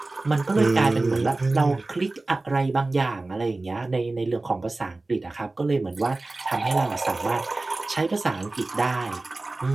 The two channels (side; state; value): left; quieter; 3.1 dB